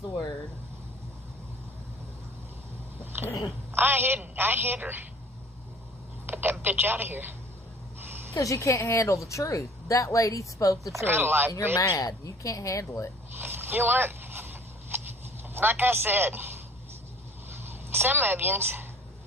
the word. I hit her. Get that bitch out of here. Because you can't handle the truth. That lady spoke the truth. got a life, And you're bitch. mad. You can't handle it. You know what? Like I said, some of yous,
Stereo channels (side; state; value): both; normal; correlation 0.50